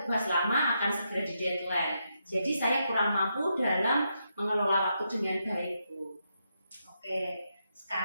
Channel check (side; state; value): both; inverted; correlation -0.82